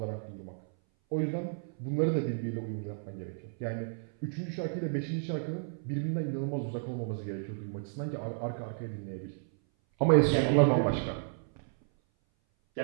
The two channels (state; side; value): silent; left; 56 dB below the other